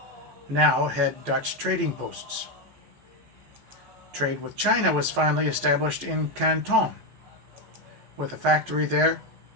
now had Dutch trading posts. Trade with China was finally established in Canton, with a factory there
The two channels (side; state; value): left; late; 14 ms